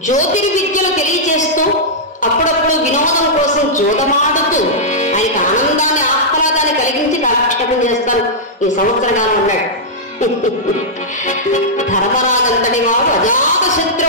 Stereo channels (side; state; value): both; normal; correlation -0.10